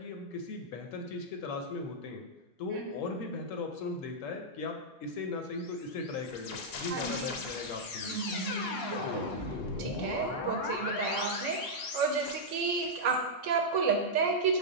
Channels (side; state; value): both; normal; correlation -0.08